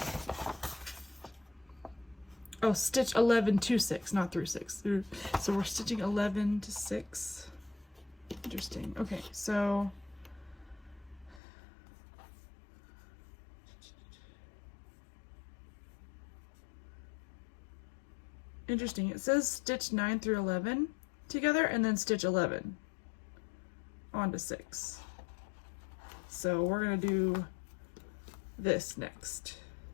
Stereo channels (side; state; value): right; drops out; at 11.4 s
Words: Oh, stitch 11 to 6, not through 6. So we're stitching 11 to 6. Interesting. Okay, so interesting. It says stitch 9 through 11 together and then stitch 11 onto 6. So we're gonna do this next.